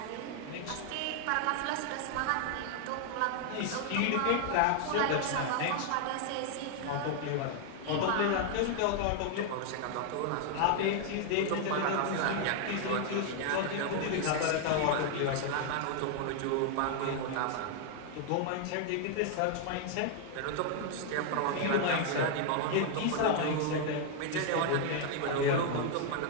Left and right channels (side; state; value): both; different; correlation 0.00